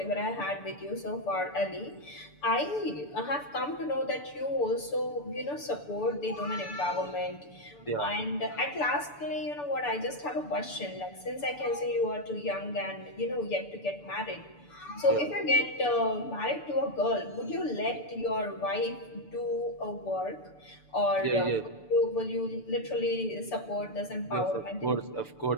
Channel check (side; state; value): right; late; 6.9 ms